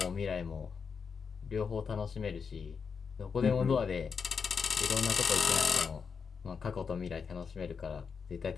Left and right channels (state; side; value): quieter; right; 5.9 dB